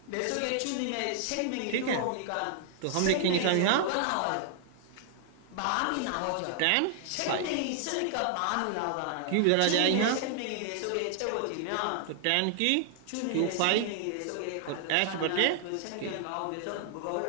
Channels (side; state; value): both; different; correlation -0.01